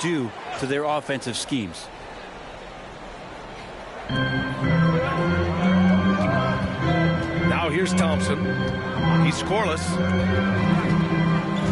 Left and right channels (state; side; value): identical; both; correlation 1.00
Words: to their offensive schemes. Now here's Thompson. He's scoreless.